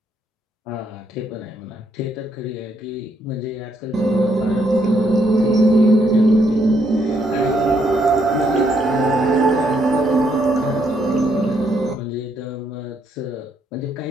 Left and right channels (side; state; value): both; normal; correlation 0.73